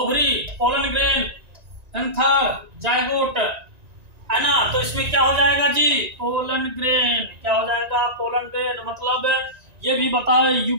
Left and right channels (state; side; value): late; left; 1.9 ms